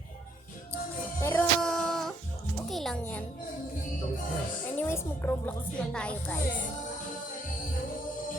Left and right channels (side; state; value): both; normal; correlation 0.68